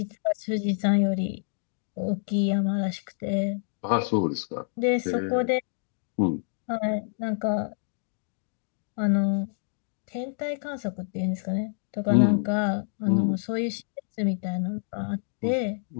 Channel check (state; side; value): silent; right; digital silence